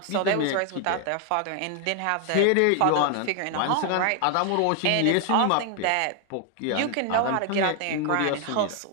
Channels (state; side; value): different; both; correlation 0.00